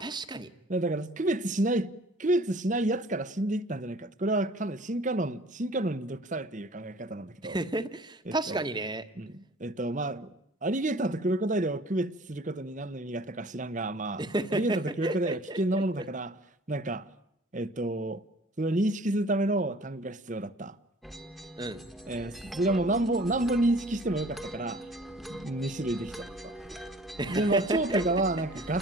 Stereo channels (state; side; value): normal; both; correlation 0.50